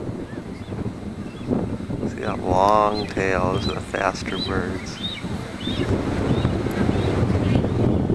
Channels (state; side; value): identical; both; correlation 1.00